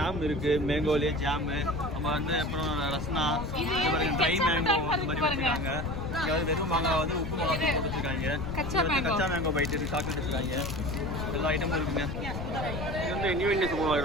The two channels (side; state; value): left; noise; rumble, 6 dB below the sound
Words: இருக்குது, மேங்கோலேயே ஜாமு. நம்ம வந்து அப்புறம் ரஸ்னா, இந்த மாதிரி ட்ரை மேங்கோ இந்த மாதிரி வச்சுருக்காங்க. அதாவது வெறும் மாங்காய் வந்து உப்பு மிளகா போட்டு வச்சுருக்காங்க. கச்சா மேங்கோ பைட் இருக்குது, சாக்லேட் வச்சுருக்காங்க. எல்லா ஐட்டமும் இருக்குங்க. இது வந்து நியூ இந்தியன் சூப்பர்